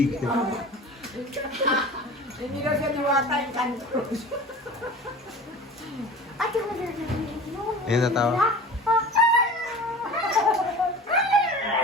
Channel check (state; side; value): normal; both; correlation 0.38